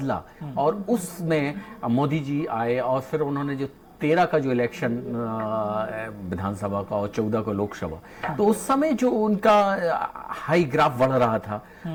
और उसमें मोदी जी आए, और फिर उन्होंने जो 13 का जो इलेक्शन विधानसभा का और 14 का लोकसभा, तो उस समय जो उनका हाई ग्राफ बढ़ रहा था,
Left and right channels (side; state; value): both; identical; correlation 1.00